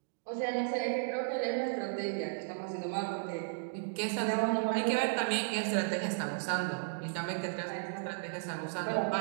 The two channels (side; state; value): left; silent; digital silence